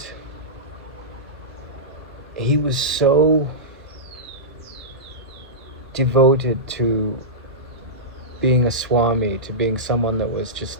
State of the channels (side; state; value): both; normal; correlation -0.15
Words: he was so devoted to being a Swami, to being someone that was